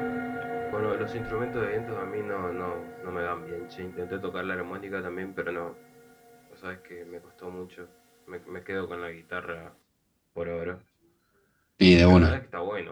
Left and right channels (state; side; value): identical; both; correlation 1.00